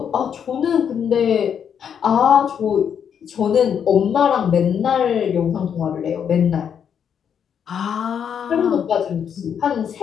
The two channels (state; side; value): quieter; right; 8.0 dB